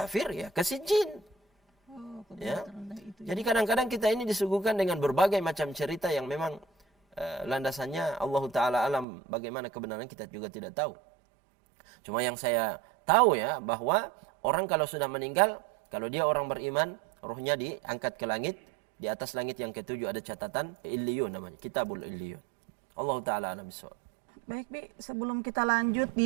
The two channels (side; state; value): left; drops out; at 9.1 s